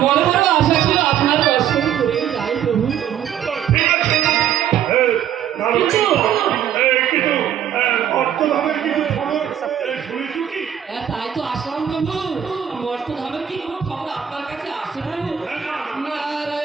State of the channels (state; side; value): quieter; left; 9.8 dB